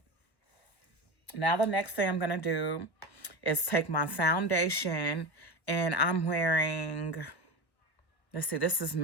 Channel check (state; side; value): late; right; 1.1 ms